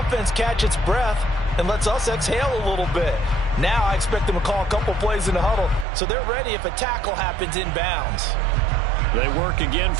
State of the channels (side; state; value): left; drops out; at 5.9 s